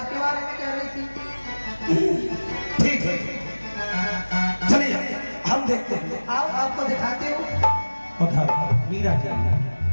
बारे में कह रही थी। ठीक है, चलिए हम देखते हैं। आओ आपको दिखाती हूँ। उधर मीरा जी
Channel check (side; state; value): both; inverted; correlation -1.00